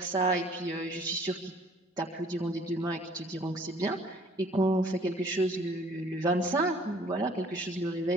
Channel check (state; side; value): normal; both; correlation 0.56